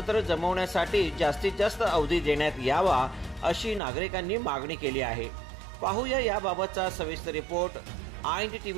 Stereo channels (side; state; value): left; drops out; at 3.8 s